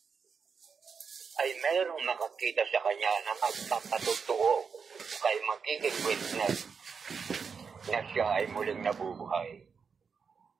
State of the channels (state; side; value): quieter; left; 5.9 dB